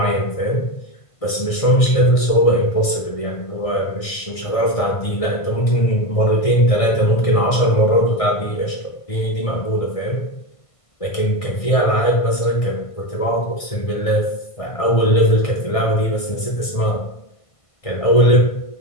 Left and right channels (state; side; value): late; right; 1.5 ms